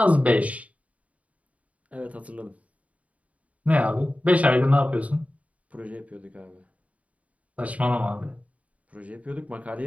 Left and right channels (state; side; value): late; left; 0.068 ms